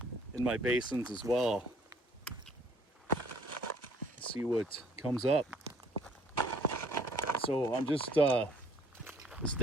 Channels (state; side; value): normal; both; correlation 0.60